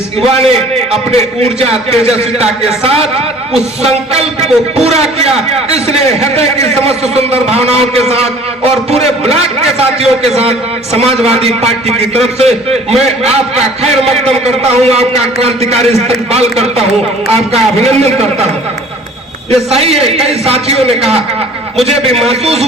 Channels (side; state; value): both; normal; correlation 0.50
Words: युवा ने अपने ऊर्जा तेजस्विता के साथ उस संकल्प को पूरा किया। इसलिए हृदय की समस्त सुंदर भावनाओं के साथ और पूरे ब्लॉक के साथियों के साथ समाजवादी पार्टी की तरफ से मैं आपका खैर मकदम करता हूं, आपका क्रांतिकारी इस्तकबाल करता हूं, आपका अभिनंदन करता हूं। ये सही है, कई साथियों ने कहा, मुझे भी महसूस